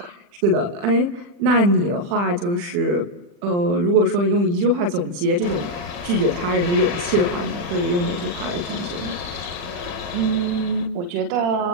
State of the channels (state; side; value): late; left; 40 ms